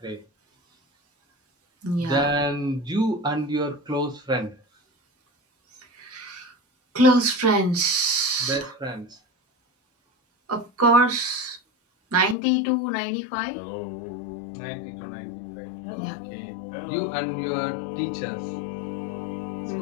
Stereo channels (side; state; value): right; drops out; at 12.4 s